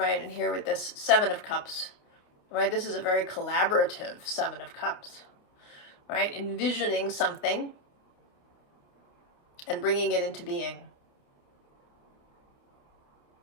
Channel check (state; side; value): late; right; 29 ms